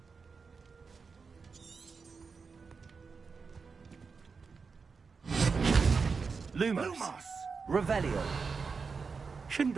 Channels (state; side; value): quieter; left; 5.1 dB